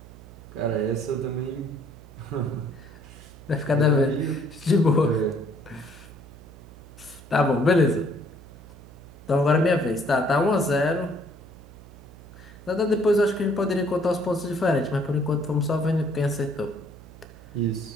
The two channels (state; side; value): noise; right; hum, 19 dB below the sound